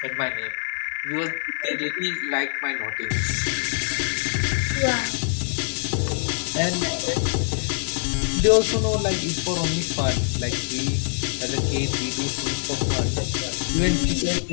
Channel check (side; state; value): right; silent; digital silence